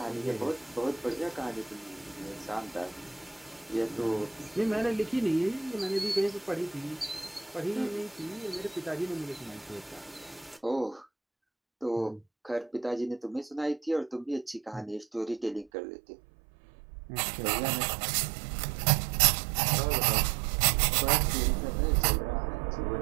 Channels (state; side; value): drops out; left; at 15.7 s